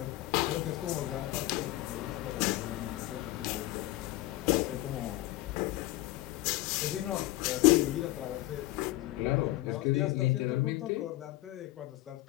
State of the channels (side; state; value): right; quieter; 17.7 dB